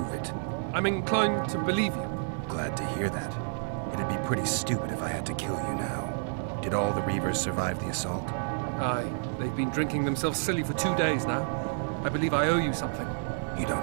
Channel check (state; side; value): silent; left; digital silence